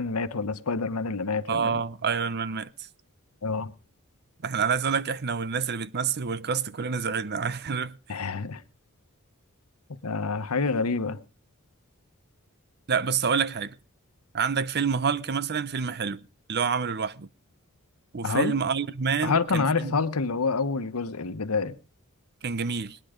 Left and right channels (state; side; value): normal; both; correlation -0.06